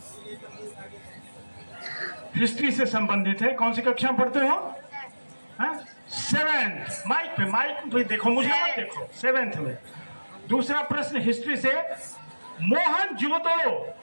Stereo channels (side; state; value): both; inverted; correlation -1.00